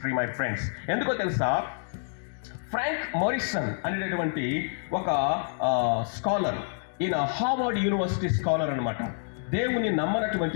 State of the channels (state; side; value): silent; right; digital silence